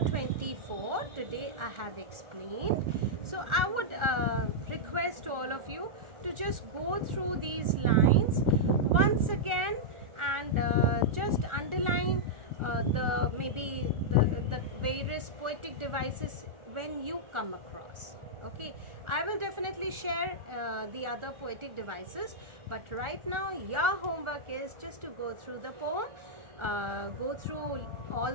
24 today I have explained. So I would request all of you to just go through these lines once again, and just underline maybe the various poetic devices when you come across. Okay, I will definitely share the other poetic devices, but right now your homework is just to go through the poem, go through all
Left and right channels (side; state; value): left; late; 1.4 ms